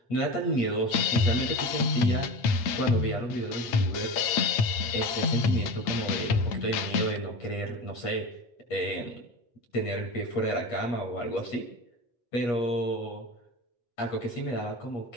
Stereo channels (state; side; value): late; right; 8.8 ms